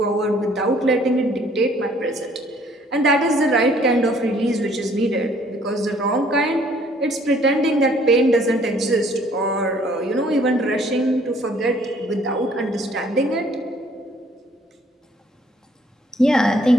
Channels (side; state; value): both; normal; correlation 0.60